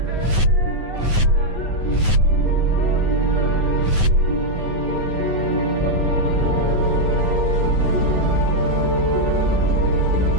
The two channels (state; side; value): late; left; 9.4 ms